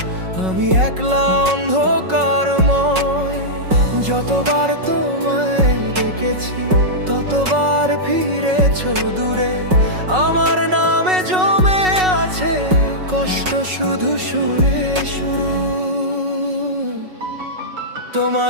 আমি একলা অন্ধকারময়। যতবার তোমায় দেখেছি ততবার ফিরেছ দূরে, আমার নামে জমে আছে কষ্ট শুধু সুরে সুর।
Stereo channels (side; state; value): left; late; 5.4 ms